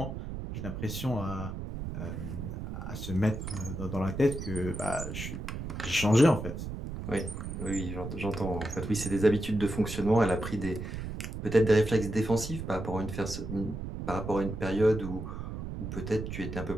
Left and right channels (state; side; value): noise; right; rumble, 7 dB below the sound